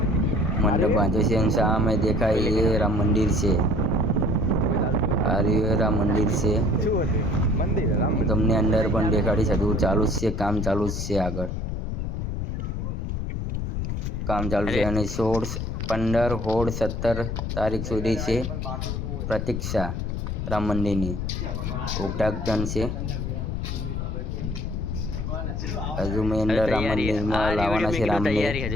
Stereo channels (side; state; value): left; noise; rumble, 3 dB below the sound